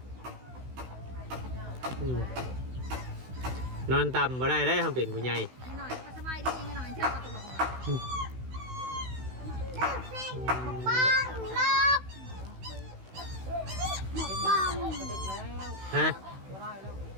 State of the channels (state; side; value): late; left; 16 ms